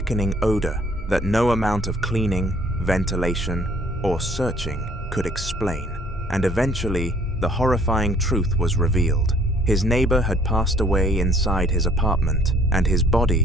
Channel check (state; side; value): normal; both; correlation 0.59